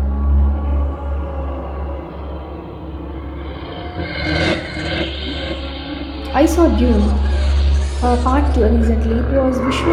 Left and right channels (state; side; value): identical; both; correlation 1.00